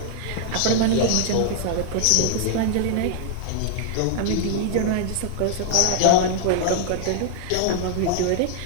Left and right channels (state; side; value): different; both; correlation 0.00